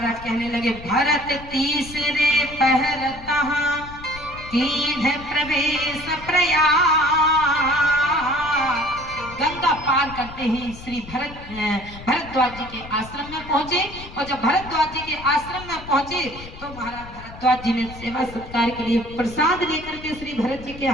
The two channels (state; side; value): noise; left; rumble, 15 dB below the sound